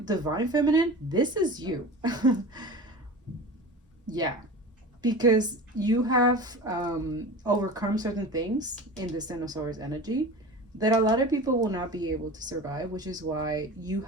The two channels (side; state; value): both; normal; correlation 0.34